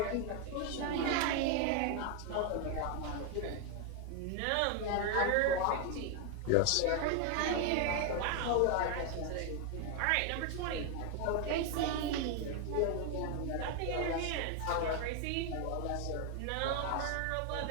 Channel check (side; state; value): both; different; correlation 0.01